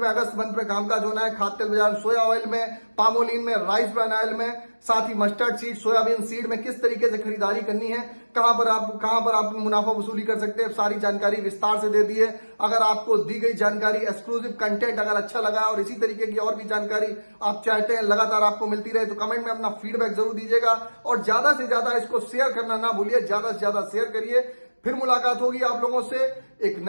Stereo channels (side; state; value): both; inverted; correlation -1.00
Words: अगस्त मंथ में कामकाज होना है। खाद्य तेल बाजार सोया ऑयल में, पामोलिन में, राइस ब्रान ऑयल में, साथ ही मस्टर्ड सीड, सोयाबीन सीड में किस तरीके से खरीदारी करनी है, कहां पर आप मुनाफा वसूली कर सकते हैं, सारी जानकारी विस्तार से दे दी है। अगर आपको दी गई जानकारी, एक्सक्लूसिव कंटेंट अगर अच्छा लगा और इसी तरीके की और भी जानकारी आप चाहते हैं लगातार आपको मिलती रहे तो कमेंट में अपना फीडबैक जरूर दीजिएगा और ज्यादा से ज्यादा इसको शेयर करना ना भूलिए, ज्यादा से ज्यादा शेयर करिए। फिर मुलाकात होगी आप लोगों से एक